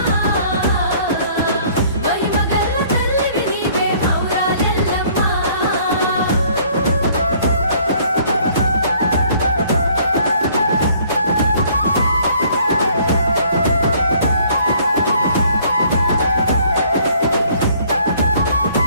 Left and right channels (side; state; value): both; inverted; correlation -0.59